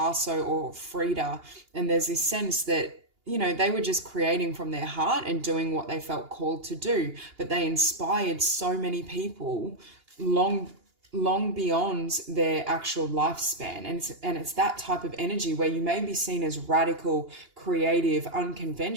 or Frida, and there's this sense that, you know, they were just creating from their heart and doing what they felt called to do, but they inspired so many people long beyond their actual lifespan. And it's that type of energy where you may be seen as radical, creative,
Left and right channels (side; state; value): left; late; 2.8 ms